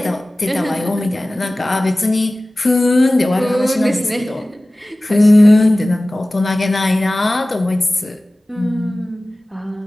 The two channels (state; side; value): normal; both; correlation 0.98